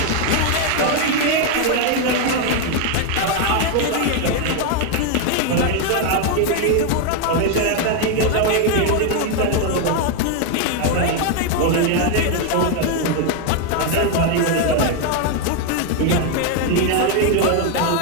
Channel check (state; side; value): different; both; correlation 0.01